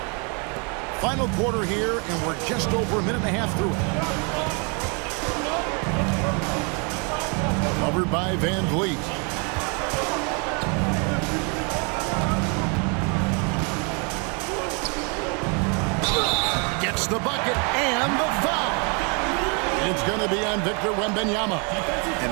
Final quarter here, and we're just over a minute and a half through it. Covered by VanVleet. Gets the bucket and the foul. It's going to be on Victor Wembanyama.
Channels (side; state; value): left; quieter; 35.0 dB